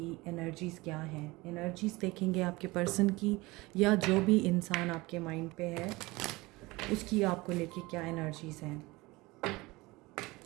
एनर्जीज़ क्या हैं। एनर्जीज़ देखेंगे आपके पर्सन की, या जो भी इंसान आपके माइंड पे है उसकी आपको लेके क्या एनर्जीज़ हैं।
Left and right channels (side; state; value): left; quieter; 22.0 dB